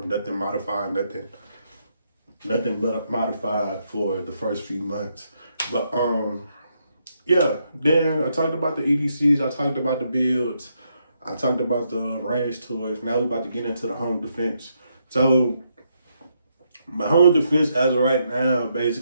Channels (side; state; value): both; inverted; correlation -0.78